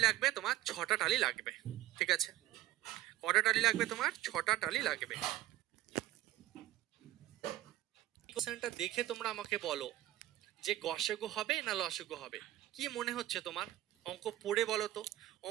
লাগবে, তোমার 6টা টালি লাগবে, ঠিক আছে। কটা টালি লাগবে তোমার, 6টা টালি লাগবে। কোশ্চেনটা দেখে তোমরা আমাকে বলো যে গসাগু হবে না লসাগু হবে, কি মনে হচ্ছে তোমার, অঙ্ক পড়ে বলো তো,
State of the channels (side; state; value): left; quieter; 15.1 dB